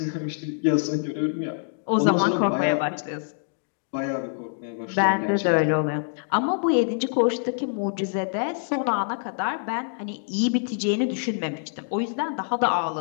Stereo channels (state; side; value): silent; right; digital silence